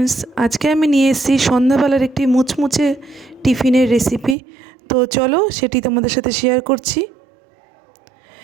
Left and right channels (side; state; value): left; drops out; at 4.4 s